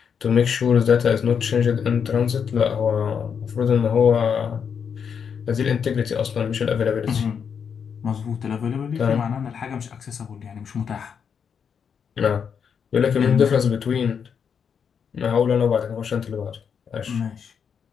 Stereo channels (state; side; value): quieter; right; 7.0 dB